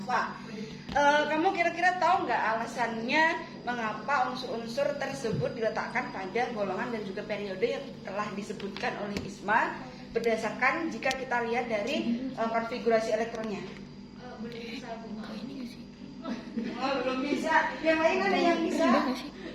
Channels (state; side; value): identical; both; correlation 1.00